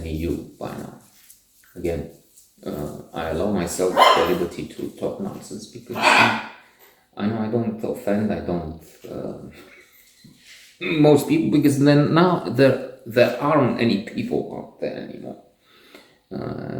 you by now. Again, I allow myself the liberty to talk nonsense because I know I don't offend, I don't most people, because then now there aren't any people out there anymore.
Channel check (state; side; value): identical; both; correlation 1.00